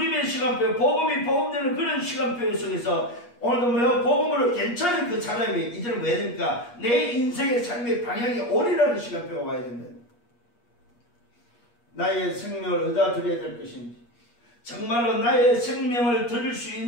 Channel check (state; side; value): late; right; 8.4 ms